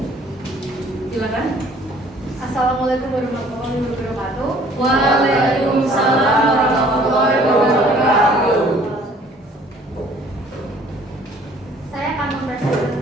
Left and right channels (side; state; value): both; normal; correlation 0.56